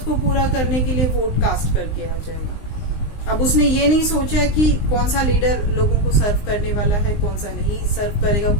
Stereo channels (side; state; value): right; late; 19 ms